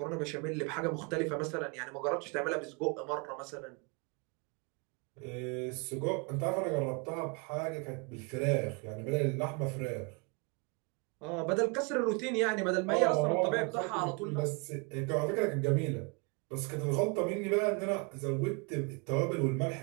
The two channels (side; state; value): left; quieter; 32.6 dB